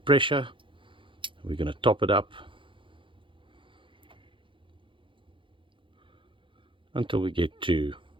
We're going to top it up until we get to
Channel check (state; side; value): late; left; 0.25 ms